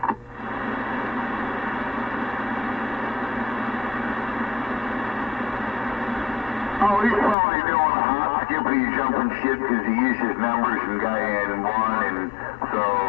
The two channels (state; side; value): drops out; right; at 7.4 s